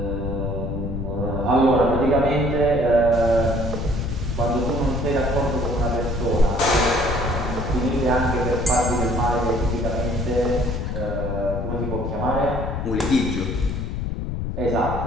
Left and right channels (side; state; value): left; noise; rumble, 3 dB below the sound